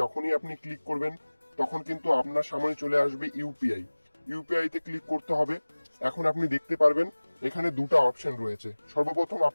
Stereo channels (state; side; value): inverted; both; correlation -1.00